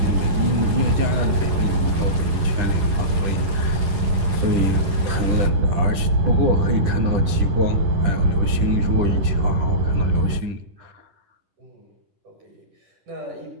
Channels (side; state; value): left; late; 10 ms